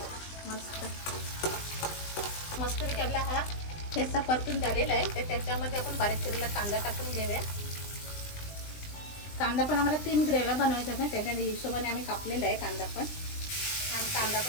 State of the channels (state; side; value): late; right; 20 ms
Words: मस्त आपला हा ठेचा परतून झालेला आहे. तर त्याच्यामध्ये आपण बारीक चिरलेला कांदा टाकून घेऊया. कांदा पण आम्हाला 3 ग्रेव्या बनवायच्या ना, त्याच्या हिशोबाने आम्ही कापलेला आहे कांदा पण. आणि कांदा